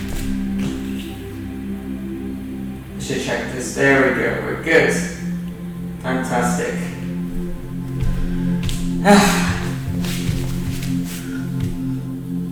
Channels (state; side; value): identical; both; correlation 1.00